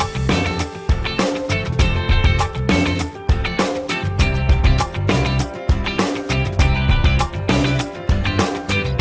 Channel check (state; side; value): identical; both; correlation 1.00